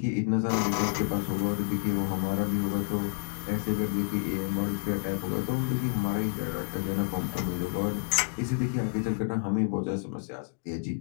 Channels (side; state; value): right; silent; 58 dB below the other